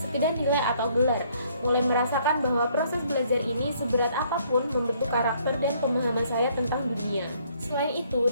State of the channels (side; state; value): both; inverted; correlation -0.65